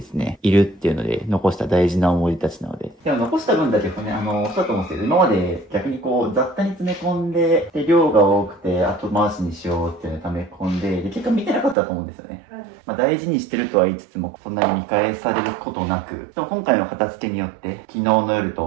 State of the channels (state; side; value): drops out; left; at 11.8 s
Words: すね、いるっていうので残した大事な思い出たちなので。でも残した分だけね、そうだと思うんですけど、今まで逆にこう雑多に詰め込んで、で、量が多くて後回しにしようっていうのを溜め込んで、で、結果見てなかったと思うんですよね。まあ大事にしてるとは言いつつも、そんなに見返されることなく、でも今回の片付けによって、昨日の夜